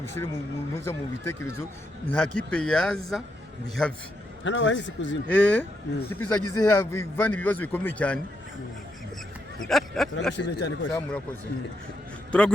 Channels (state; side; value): normal; both; correlation 0.80